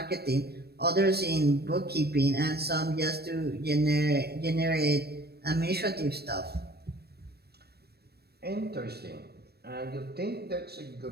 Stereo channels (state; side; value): late; left; 0.47 ms